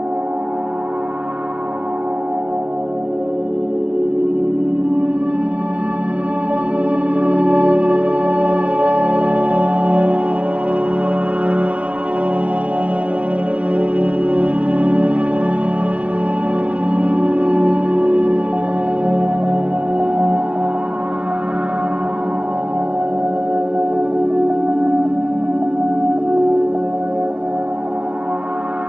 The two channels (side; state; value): left; late; 0.064 ms